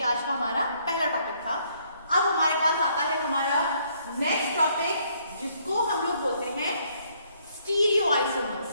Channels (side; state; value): both; inverted; correlation -0.68